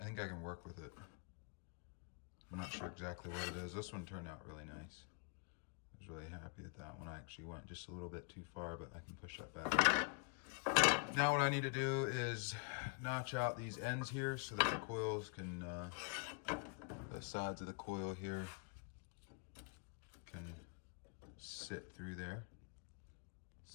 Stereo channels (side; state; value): right; quieter; 39.9 dB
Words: think I can work with it. I'm not sure exactly what it is. This one turned out really nice. I was really happy with that one. I actually went just a little bit too far, but I can push that back. Now what I need to do is notch out these ends here so that the coils can, the sides of the coil here can sit through there.